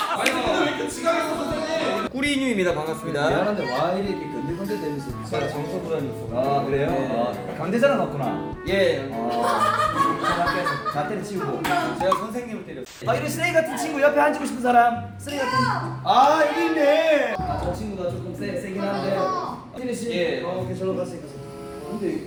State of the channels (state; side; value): identical; both; correlation 1.00